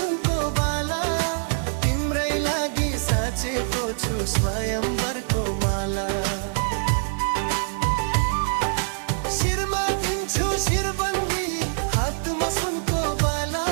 बाला। तिम्रै लागि साचेको छु स्वयंवरको माला। शिरमा दिन्छु शिरबन्दी, हातमा सुनको बाला।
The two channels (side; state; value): left; silent; digital silence